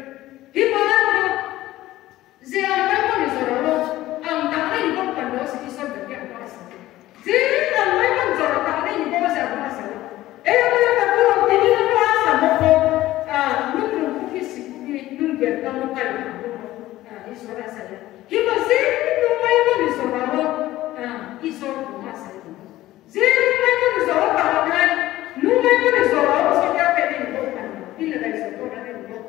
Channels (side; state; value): right; quieter; 15.8 dB